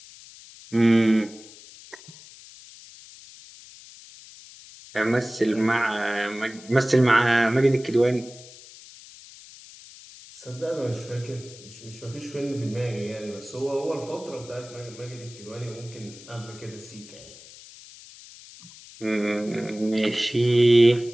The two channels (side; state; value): left; noise; hiss, 19 dB below the sound